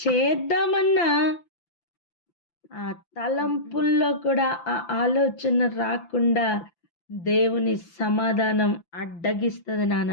చేద్దామన్నా ఆ తలంపుల్లో కూడా ఆ ఆలోచన రాకుండా దేవుని సమాధానం అడ్డగిస్తుంది నాన్న.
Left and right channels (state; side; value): late; right; 5.9 ms